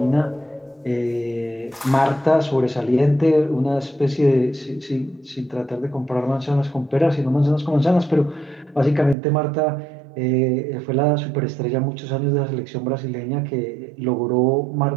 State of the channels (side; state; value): left; drops out; at 9.2 s